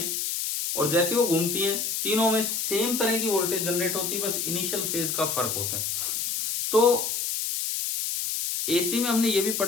और जैसे वो घूमती हैं तीनों में सेम तरह की वोल्टेज जनरेट होती है, बस इनिशियल फेज का फर्क होता है। तो एसी में हमने ये भी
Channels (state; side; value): noise; left; hiss, 1 dB below the sound